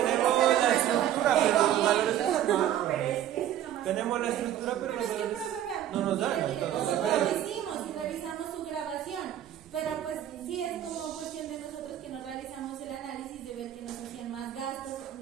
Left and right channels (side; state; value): left; quieter; 11.3 dB